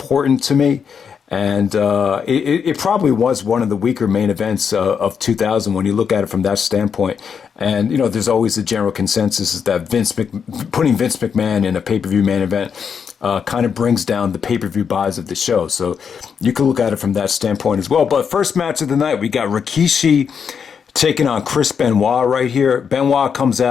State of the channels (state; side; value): quieter; right; 6.8 dB